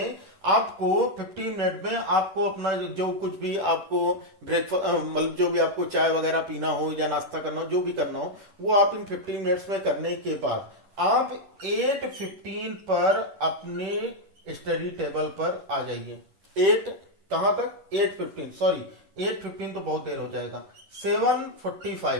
आपको 15 मिनट में आपको अपना जो कुछ भी आपको ब्रेकफास्ट, मतलब जो भी आपको चाय वगैरह पीना हो या नाश्ता करना हो, जो भी करना हो, वो आप इन 15 मिनट्स में करने के बाद आप 8:15 पर अपने स्टडी टेबल पर आ जाइए। 8 कहां तक, 8:15, सॉरी 8:15 तो बहुत देर हो जाएगा, 7:45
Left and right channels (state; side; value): late; left; 10 ms